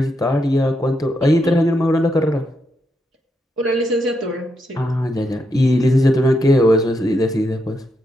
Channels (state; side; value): normal; both; correlation 0.81